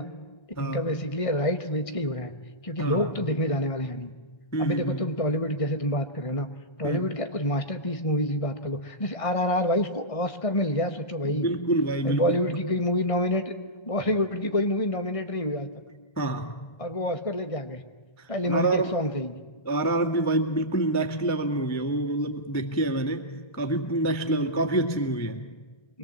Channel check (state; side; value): late; right; 1.3 ms